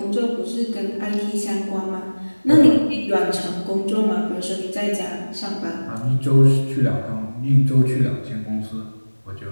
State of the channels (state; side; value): inverted; both; correlation -1.00